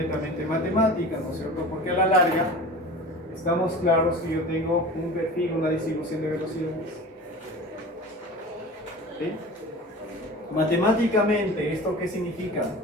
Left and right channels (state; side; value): normal; both; correlation 0.36